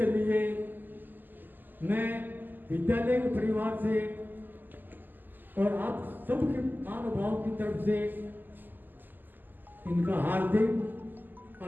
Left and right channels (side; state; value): left; late; 0.089 ms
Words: लिए मैं विद्यालय के परिवार से और आप सबके महानुभाव की तरफ से इनका हार्दिक